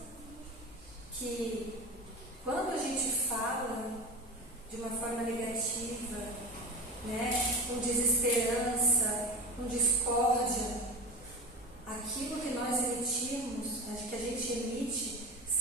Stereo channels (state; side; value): normal; both; correlation 0.29